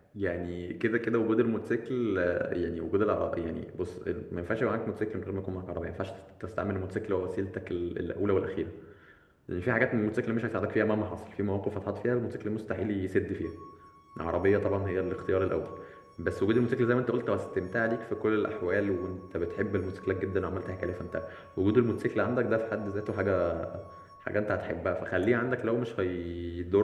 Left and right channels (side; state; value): both; identical; correlation 1.00